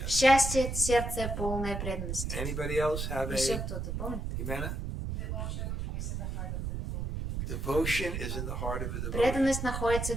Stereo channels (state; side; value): noise; right; rumble, 3 dB below the sound